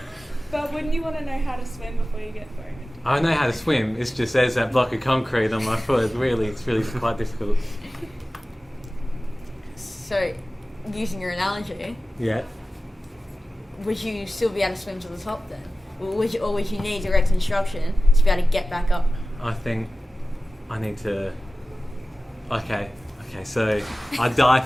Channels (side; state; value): both; normal; correlation 0.96